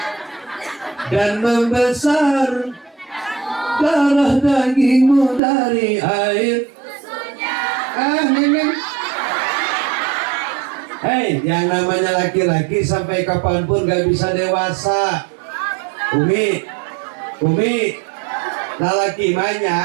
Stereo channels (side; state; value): left; drops out; at 5.4 s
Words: dan membesar, darah dagingmu dari air Hei, yang namanya laki-laki sampai kapanpun gak bisa dewasa. Umi, lalaki mah